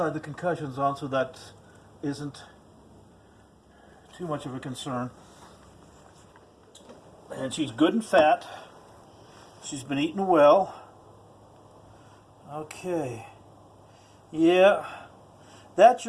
the concussion's on, so that isn't too much of a concern. And she's good and fat. She's been eating well. Okay. Yeah. That's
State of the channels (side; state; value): both; identical; correlation 1.00